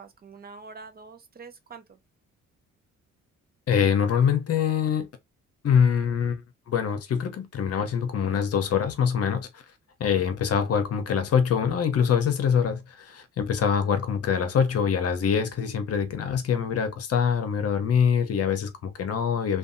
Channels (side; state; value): right; quieter; 7.0 dB